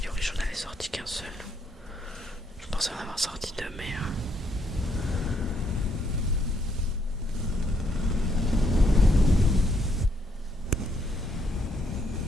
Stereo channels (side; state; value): both; normal; correlation 0.73